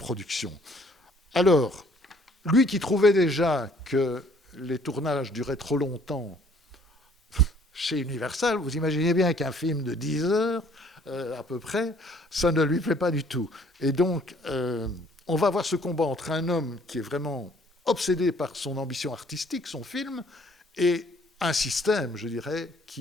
Alors, lui qui trouvait déjà que les tournages duraient trop longtemps chez Universal, vous imaginez bien qu'un film de 10 heures, à peu près, ça ne lui plaît pas du tout. Et donc, on va avoir ce combat entre un homme qui est vraiment obsédé par son ambition artistique, son film, et un système, je dirais,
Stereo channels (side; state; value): both; normal; correlation 0.60